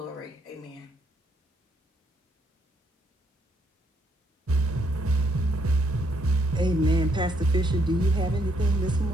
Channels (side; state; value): both; normal; correlation 0.73